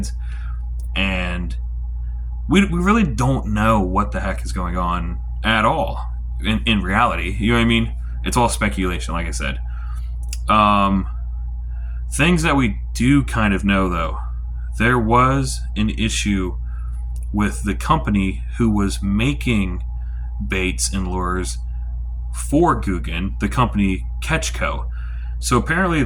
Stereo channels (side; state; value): both; identical; correlation 1.00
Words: And we really don't know what the heck is going on at all in reality. You know what I mean? It's all speculation, like I said. Things that we do kind of know, though. There was an issue with the company who was making baits and lures for Googan, the company Catchco. So apparently